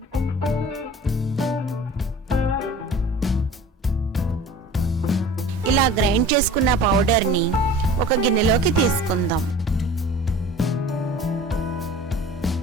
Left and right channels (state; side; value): normal; both; correlation 0.42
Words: ఇలా గ్రైండ్ చేసుకున్న పౌడర్ని ఒక గిన్నెలోకి తీసుకుందాం.